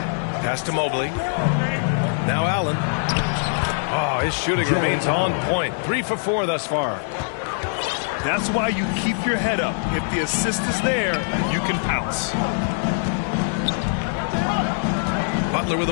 Pass to Mobley. Now Allen. Oh, his shooting remains on point. 3 for 4 thus far. That's why you keep your head up. If the assist is there, you can pounce. Butler with the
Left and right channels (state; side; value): silent; right; digital silence